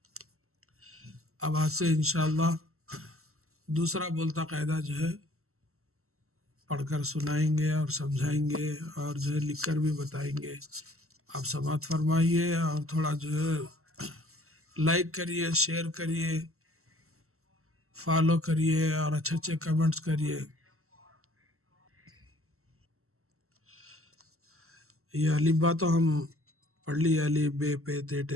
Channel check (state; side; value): late; left; 0.63 ms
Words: اب آج سے انشاءاللہ دوسرا بولتا قاعدہ جو ہے پڑھ کر سنائیں گے اور سمجھائیں گے اور جو ہے لکھ کر بھی بتائیں گے۔ آپ سماعت فرمائیے اور تھوڑا جو ہے لائک کریے، شیئر کریے، فالو کریے اور اچھے اچھے کمنٹس کریے۔ یہ الف با تو ہم پڑھ لی، الف بے پے تے